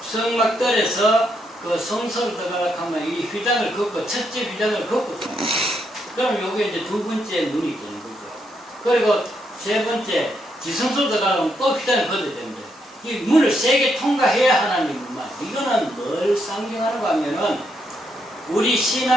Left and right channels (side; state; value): both; normal; correlation 0.78